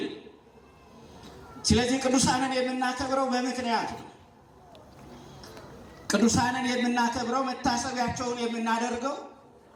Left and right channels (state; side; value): identical; both; correlation 1.00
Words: ስለዚህ ቅዱሳንን የምናከብረው በምክንያት ነው። ቅዱሳንን የምናከብረው መታሰቢያቸውን የምናደርገው